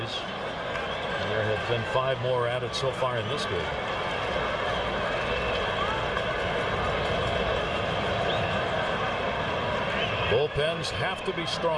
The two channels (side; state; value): both; identical; correlation 1.00